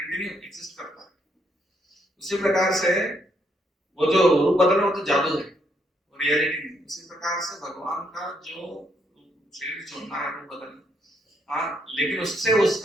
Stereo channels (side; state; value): both; normal; correlation 0.74